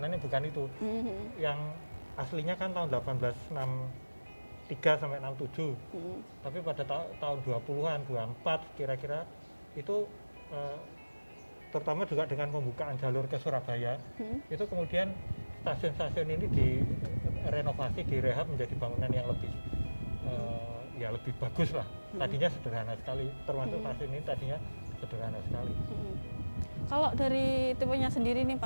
bukan itu. Yang aslinya kan tahun 1863 sampai 67. Tapi pada tahun 20-an, 24 kira-kira itu terutama juga dengan pembukaan jalur ke Surabaya, itu kemudian stasiun-stasiun ini direnovasi, direhab menjadi bangunan yang lebih ya lebih bagus lah. Tadinya sederhana sekali, termasuk stasiun ini tadinya sederhana sekali. Kalau dari tipenya sendiri nih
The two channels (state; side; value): inverted; both; correlation -1.00